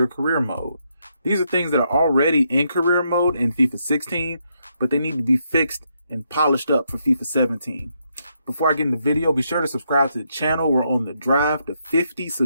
Career Mode. These are things that are already in career mode in FIFA 16, but they need to be fixed and polished up for FIFA 17. Before I get in the video, be sure to subscribe to the channel. We're on the drive to 50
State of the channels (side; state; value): both; inverted; correlation -0.78